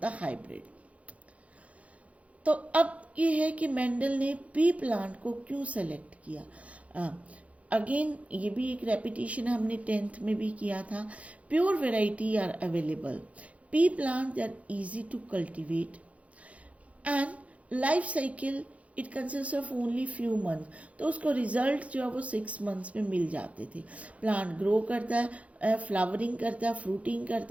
the hybrid. तो अब ये है कि Mendel ने P plant को क्यों select किया. Again ये भी एक रेपिटेशन हमने 10th में भी किया था. Pure variety are available. Pea plant they are easy to cultivate and life cycle it consist of only few month. तो उसको रिजल्ट जो है वो 6 months में मिल जाते थे. प्लांट ग्रो करता है, फ्लावरिंग करता है, फ्रूटिंग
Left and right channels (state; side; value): late; left; 0.065 ms